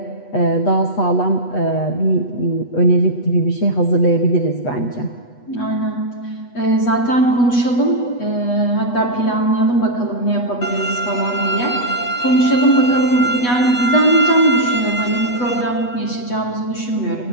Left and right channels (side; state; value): right; late; 8.2 ms